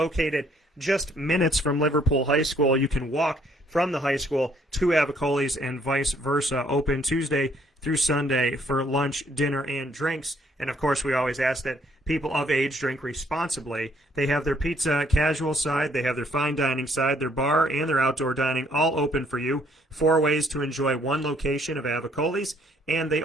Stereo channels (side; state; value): both; normal; correlation 0.66